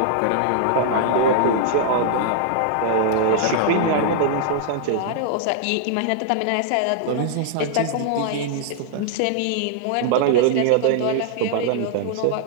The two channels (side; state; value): both; different; correlation -0.01